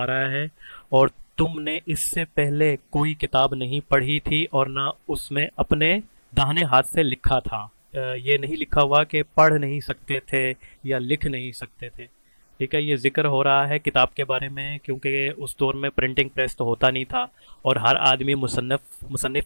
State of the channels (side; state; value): both; inverted; correlation -1.00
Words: رہا ہے: اور تم نے اس سے پہلے کوئی کتاب نہیں پڑھی تھی اور نہ اس میں اپنے داہنے ہاتھ سے لکھا تھا. یہ نہیں لکھا ہوا کہ پڑھ نہیں سکتے تھے یا لکھ نہیں سکتے تھے. ٹھیک ہے، یہ ذکر ہو رہا ہے کتاب کے بارے میں، کیونکہ اس دور میں پرنٹنگ پریس تو ہوتا نہیں تھا اور ہر آدمی